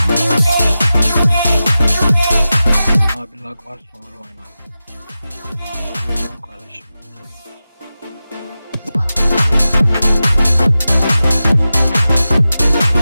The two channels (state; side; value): inverted; both; correlation -0.93